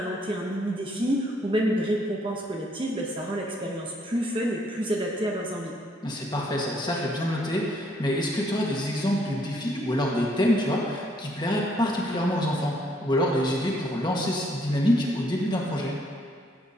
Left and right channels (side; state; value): both; normal; correlation 0.68